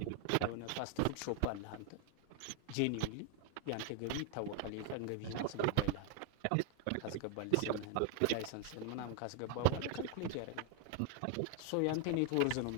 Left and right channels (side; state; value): both; different; correlation 0.00